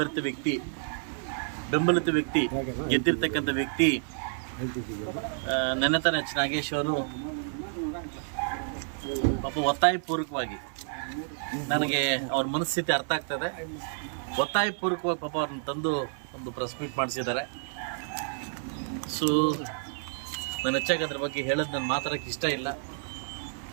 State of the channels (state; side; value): silent; left; 55 dB below the other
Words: ವ್ಯಕ್ತಿ, ಬೆಂಬಲಿತ ವ್ಯಕ್ತಿ, ಗೆದ್ದಿರ್ತಕ್ಕಂಥ ವ್ಯಕ್ತಿ ನೆನೆತನ ಎಚ್ ನಾಗೇಶ್ ಅವರು ಪಾಪ ಒತ್ತಾಯಪೂರ್ವಕವಾಗಿ, ನನಗೆ ಅವ್ರ ಮನಸ್ಥಿತಿ ಅರ್ಥ ಆಗ್ತದೆ, ಒತ್ತಾಯಪೂರ್ವಕವಾಗಿ ಪಾಪ ಅವ್ರನ್ನ ತಂದು ಒಂದು ಪ್ರೆಸ್ ಮೀಟ್ ಮಾಡಿಸಿದ್ದಾರೆ. ಸೊ ನಾನು ಹೆಚ್ಚಾಗಿ ಅದ್ರ ಬಗ್ಗೆ ಹೇಳೋದು ನಾನು ಮಾತಾಡೋಕ್ಕೆ ಇಷ್ಟ ಇಲ್ಲ,